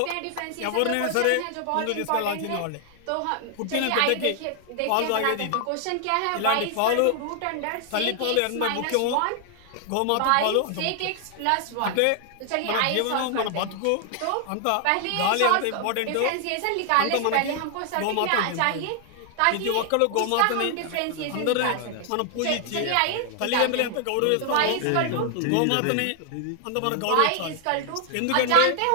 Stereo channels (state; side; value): different; both; correlation 0.00